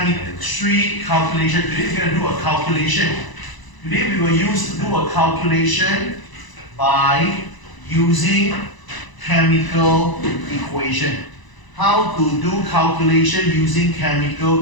calculation. Today we're going to do a calculation. Today we will do a calculation by using chemical equation. How to do calculation using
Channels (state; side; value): late; right; 1.0 ms